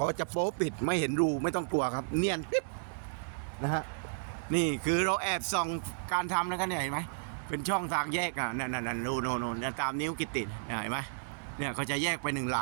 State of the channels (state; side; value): silent; left; digital silence